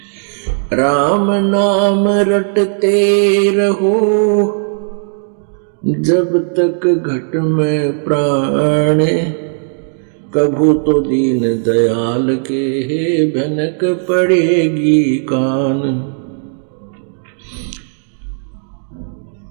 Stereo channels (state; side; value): silent; left; digital silence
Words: राम नाम रटते रहो, जब तक घट में प्राण, कभू तो दीन दयाल के भनक पड़ेगी कान।